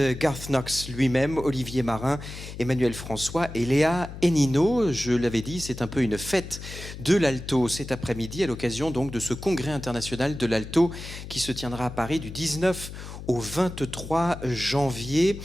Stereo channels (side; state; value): left; noise; hum, 11 dB below the sound